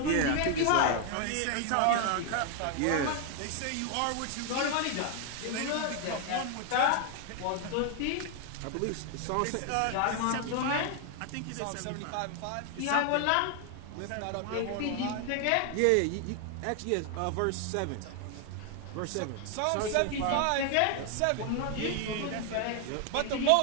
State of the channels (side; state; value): both; different; correlation 0.00